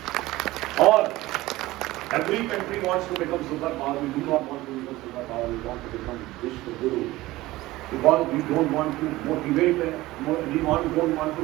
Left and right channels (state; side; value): quieter; left; 18.1 dB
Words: और every country wants to become superpower. We do not want to become superpower. We want to become Vishnu Guru. Because we don't want to motivate. We don't want